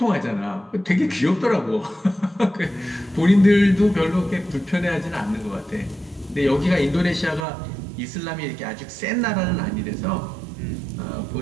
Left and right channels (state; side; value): drops out; left; at 7.5 s